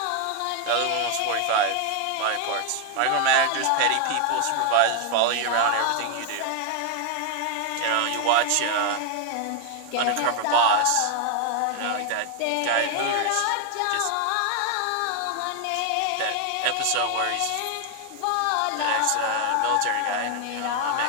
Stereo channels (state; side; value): different; both; correlation 0.01